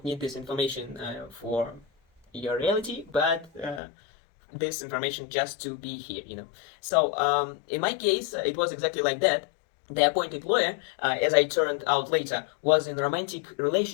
need this information for your reality, but this information just to be here, in my case, it was exactly like that. The appointed lawyer, as I turned out later, was in a romantic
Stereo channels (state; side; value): drops out; right; at 3.8 s